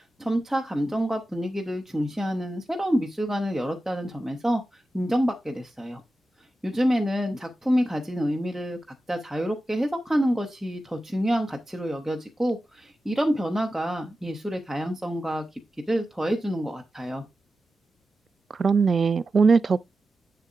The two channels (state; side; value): normal; both; correlation 0.92